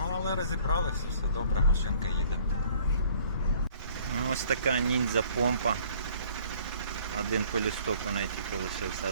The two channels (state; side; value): inverted; both; correlation -0.56